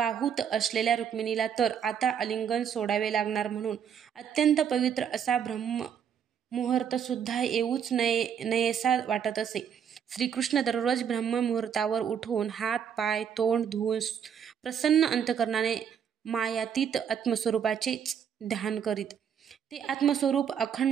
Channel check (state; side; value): quieter; left; 8.0 dB